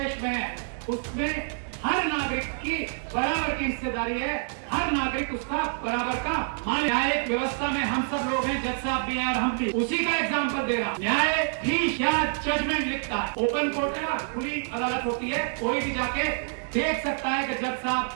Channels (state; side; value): silent; left; 60 dB below the other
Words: में है, उसमें हर नागरिक की बराबर की हिस्सेदारी है, हर नागरिक उसका बराबर का मालिक। न्यायिक व्यवस्था में हम सब लोग हैं, जज साहब भी हैं और हम भी। उसी का एग्जाम्पल दे रहा हूं। न्यायाधीश क्या जजमेंट लिखता है, ओपन कोर्ट है, खुली अदालत होती है, कोई भी जाके देख सकता है कि जज साहब